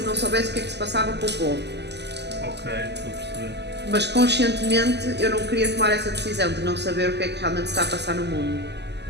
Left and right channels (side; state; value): left; late; 0.50 ms